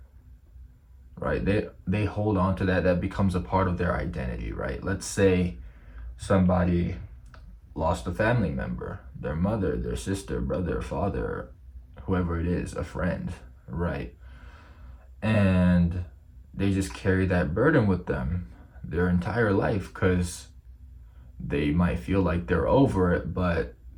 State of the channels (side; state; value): both; identical; correlation 1.00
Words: right? They hold on to that becomes a part of their identity, right? Let's say somebody lost a family member, their mother, their sister, brother, father, whoever it is, a friend, right? And they just carry that burden with them their entire life because they might feel like they're over it, but